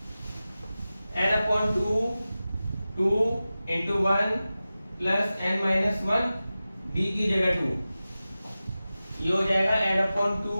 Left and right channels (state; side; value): inverted; both; correlation -0.95